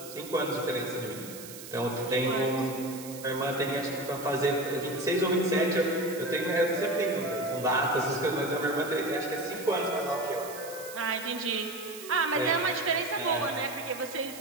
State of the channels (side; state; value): right; noise; hiss, 14 dB below the sound